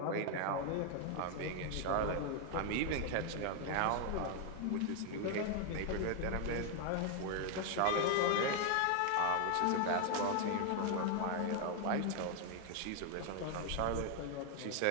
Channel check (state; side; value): different; both; correlation 0.00